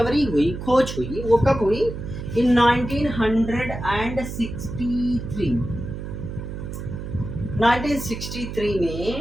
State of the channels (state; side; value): noise; right; hum, 8 dB below the sound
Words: हुई, खोज हुई, वो कब हुई? इन 1963। 1963